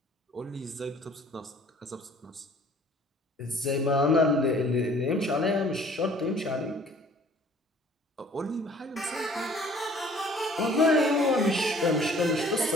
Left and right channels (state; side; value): normal; both; correlation 0.54